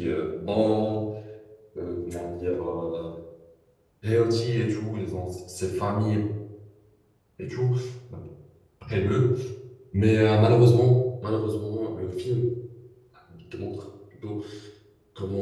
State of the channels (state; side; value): identical; both; correlation 1.00